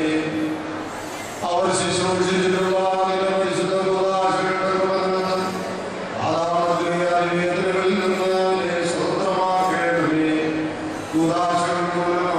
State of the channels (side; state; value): both; identical; correlation 1.00